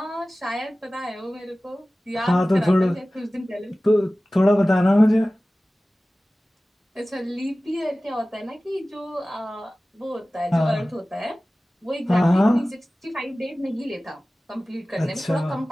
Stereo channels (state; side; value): normal; both; correlation 0.97